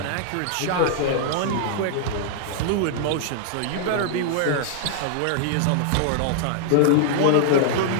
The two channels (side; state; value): both; different; correlation -0.01